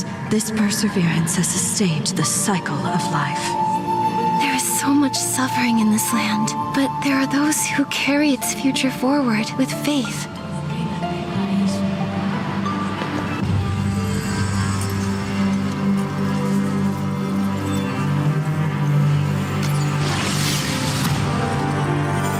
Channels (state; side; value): identical; both; correlation 1.00